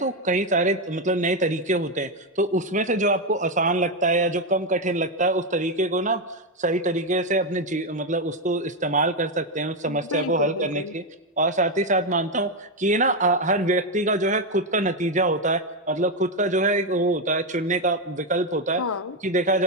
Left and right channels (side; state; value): both; normal; correlation 0.06